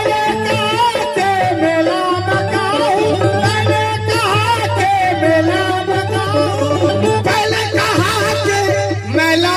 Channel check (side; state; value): both; identical; correlation 1.00